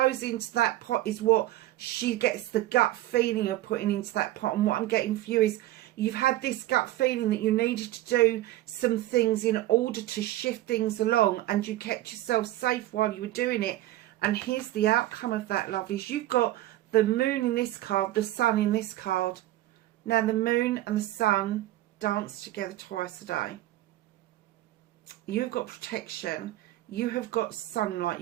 into that pot is what she gets the gut feeling of putting into that pot. And what I'm getting for you is you've had this gut feeling that you needed to do some things in order to shift things along, and you kept yourself safe while you were doing it. And here's the outcome of that, lovelies. You've got the moon in this card, the sun in this card. Now the moon and the sun dance together twice a day. You've got protection, you have got sunlight,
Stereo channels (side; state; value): left; quieter; 15.3 dB